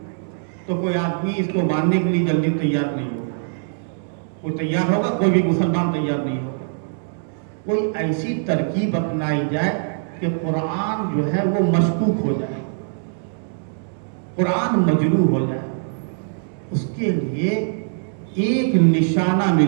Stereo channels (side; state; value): left; silent; digital silence